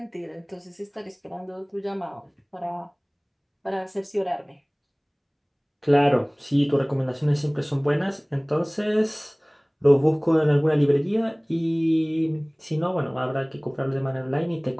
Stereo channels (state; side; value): identical; both; correlation 1.00